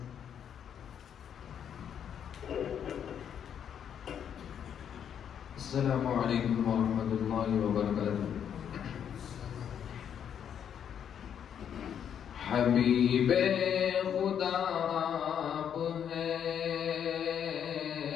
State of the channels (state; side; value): quieter; right; 8.6 dB